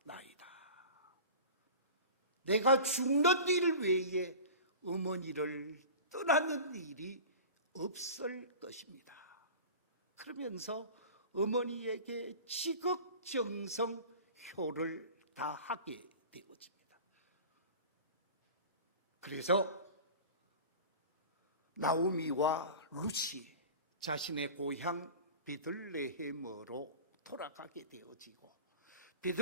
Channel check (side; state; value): both; inverted; correlation -0.36